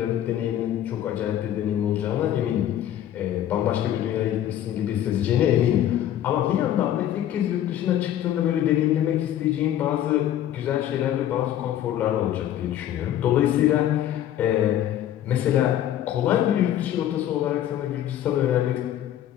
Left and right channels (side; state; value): right; quieter; 11.6 dB